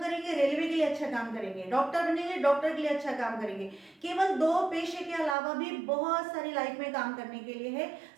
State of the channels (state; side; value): drops out; left; at 5.4 s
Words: रेलवे के लिए अच्छा काम करेंगे। डॉक्टर बनेंगे, डॉक्टर के लिए अच्छा काम करेंगे। केवल 2 पेशे के अलावा भी बहुत सारी लाइफ में काम करने के लिए है।